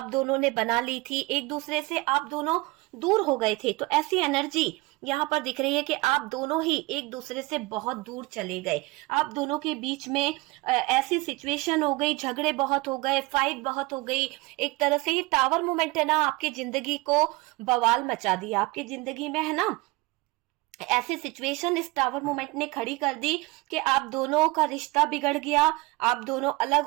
दोनों ने बना ली थी, एक दूसरे से आप दोनों दूर हो गए थे। तो ऐसी एनर्जी यहाँ पर दिख रही है कि आप दोनों ही एक दूसरे से बहुत दूर चले गए। आप दोनों के बीच में ऐसी सिचुएशन हो गई, झगड़े बहुत हो गए, फाइट बहुत हो गई। एक तरह से ये टावर मूवमेंट है ना, आपकी जिंदगी को बवाल मचा दिया, आपकी जिंदगी में है ना ऐसी सिचुएशन इस टावर मूवमेंट ने खड़ी कर दी कि आप दोनों का रिश्ता बिगड़ गया, आप दोनों अलग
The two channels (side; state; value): left; quieter; 22.9 dB